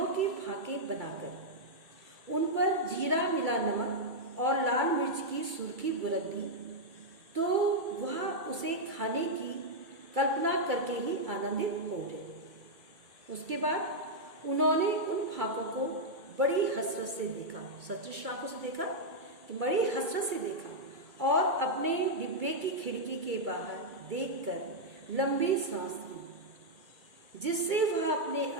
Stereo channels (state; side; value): late; left; 2.3 ms